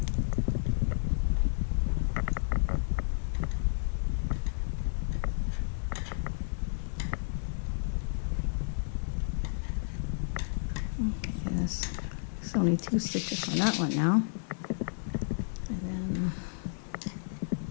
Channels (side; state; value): right; silent; 57 dB below the other